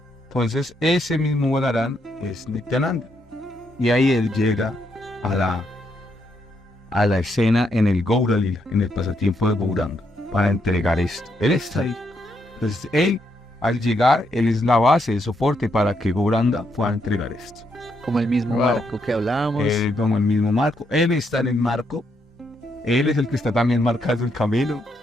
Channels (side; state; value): both; normal; correlation 0.77